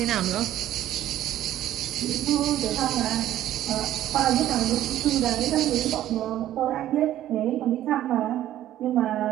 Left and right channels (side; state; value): left; quieter; 12.8 dB